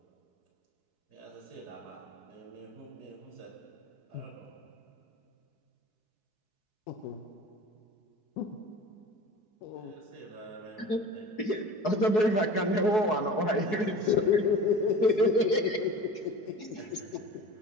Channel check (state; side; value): late; right; 4.7 ms